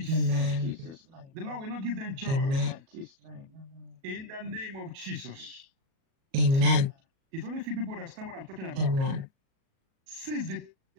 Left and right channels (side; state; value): left; late; 37 ms